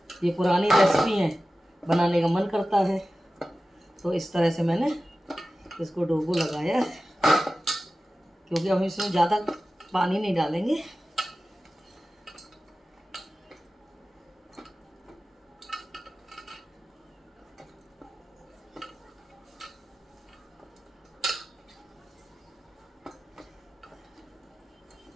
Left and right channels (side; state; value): both; normal; correlation 0.95